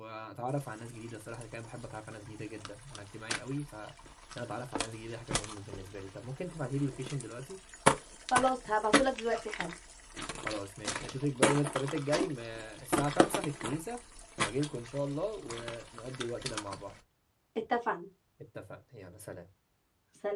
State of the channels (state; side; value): identical; both; correlation 1.00